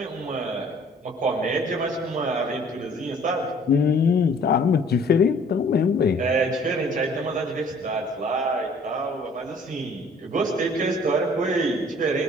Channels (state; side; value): normal; both; correlation 0.55